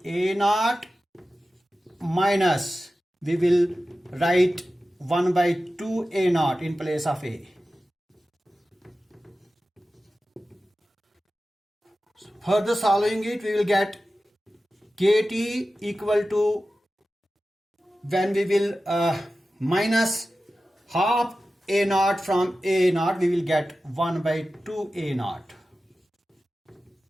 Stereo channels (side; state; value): both; normal; correlation 0.94